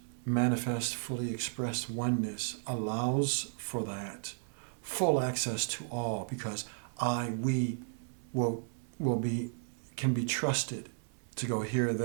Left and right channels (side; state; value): left; silent; digital silence